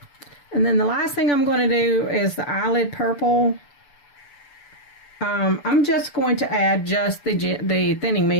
And then the last thing I'm going to do is the eyelid purple. I'm just going to add just the thinning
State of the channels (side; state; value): right; late; 6.9 ms